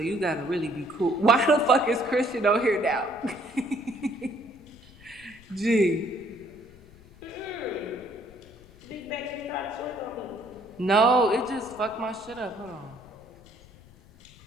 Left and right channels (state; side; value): noise; left; rumble, 23 dB below the sound